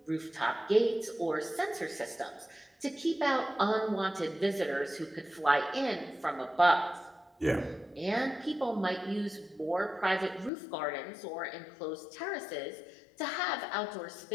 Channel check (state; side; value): drops out; right; at 10.5 s